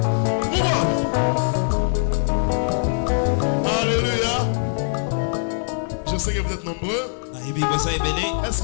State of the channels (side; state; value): right; silent; digital silence